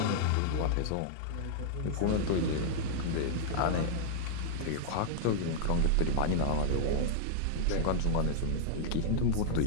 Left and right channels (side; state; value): both; different; correlation -0.01